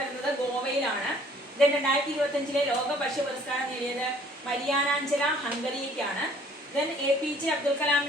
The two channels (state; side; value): normal; both; correlation 0.57